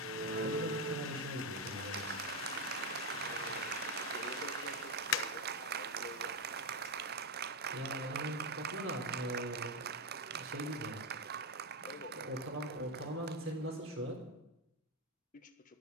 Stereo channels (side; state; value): both; normal; correlation 0.07